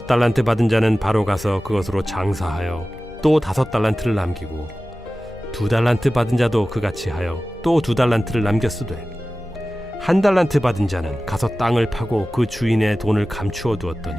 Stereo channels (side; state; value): left; noise; hum, 22 dB below the sound